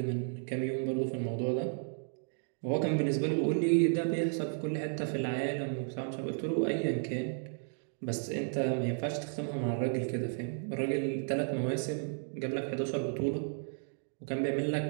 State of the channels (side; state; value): left; silent; 55 dB below the other